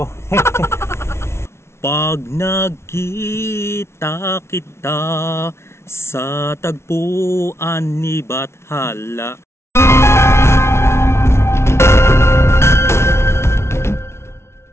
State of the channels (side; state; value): right; late; 0.13 ms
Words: Pag nagkita kita sa tagpuan ni Bathala.